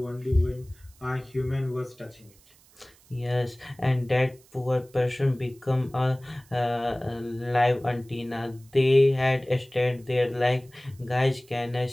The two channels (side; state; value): right; noise; hiss, 28 dB below the sound